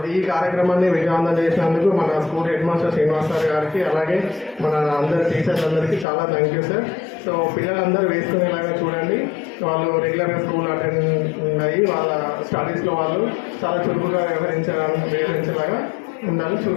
ఈ కార్యక్రమాన్ని విజయవంతం చేసినందుకు మన school head master Srinivas sir గారికి, అలాగే మన అందరి టీచర్స్ అందరికీ చాలా థ్యాంక్ యూ సార్. సో పిల్లలందరూ వేసుకునేలాగా చూడండి, వాళ్ళు రెగ్యులర్గా స్కూల్ అటెండ్ అయ్యి వాళ్ళ స్టడీస్లో వాళ్ళు చాలా చురుకుగా వ్యవహరించేలాగా ఉండాలని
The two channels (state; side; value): drops out; right; at 6.1 s